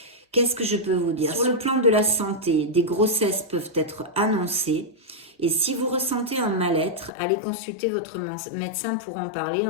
Qu'est-ce que je peux vous dire? Sur le plan de la santé, des grossesses peuvent être annoncées. Et si vous ressentez un mal-être, allez consulter votre médecin pour en parler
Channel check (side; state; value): right; drops out; at 7.1 s